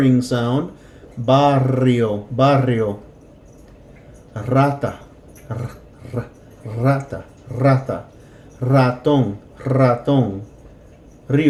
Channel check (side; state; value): both; identical; correlation 1.00